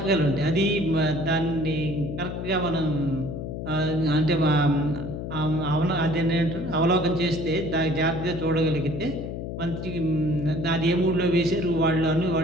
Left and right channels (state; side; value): noise; left; hum, 6 dB below the sound